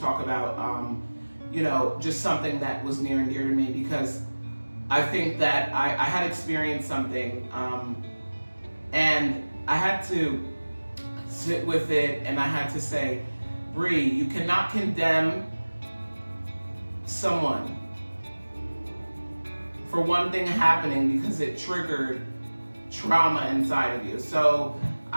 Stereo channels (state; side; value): inverted; both; correlation -1.00